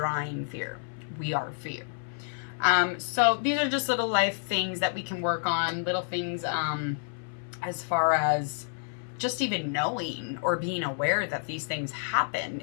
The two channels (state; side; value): silent; right; 58 dB below the other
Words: fear. We are fear. So these are just little life things that we can work on, little things as far as just even knowing or being aware that these things happen